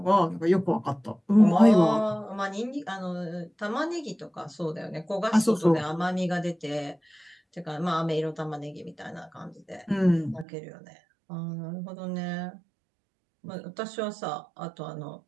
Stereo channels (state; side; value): drops out; left; at 10.5 s